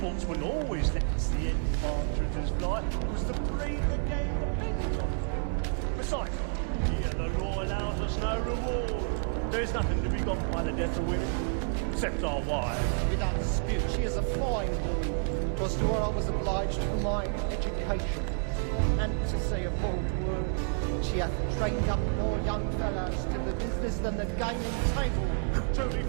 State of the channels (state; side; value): silent; left; 58 dB below the other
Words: always lets the end partridges fly, because the breed of the game depends on it. Besides, here the law allows us no reward. There's nothing to be got by the death of women, except our wives. Without dispute, she is a fine woman. 'Twas to her I was obliged for my education. And to say a bold word, she hath trained up more young fellows to the business than the gaming table. Truly,